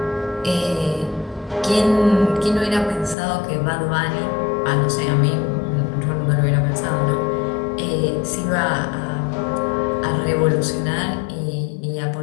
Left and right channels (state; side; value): drops out; right; at 3.2 s